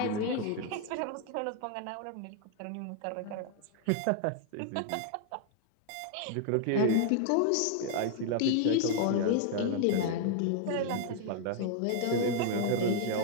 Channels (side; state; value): both; different; correlation 0.00